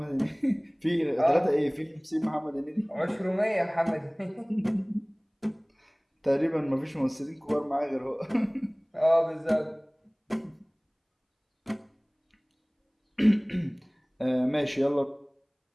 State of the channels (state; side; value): identical; both; correlation 1.00